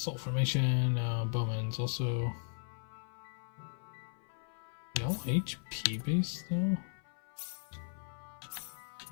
formation, Bowman's also no HP base though.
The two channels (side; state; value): right; silent; 53 dB below the other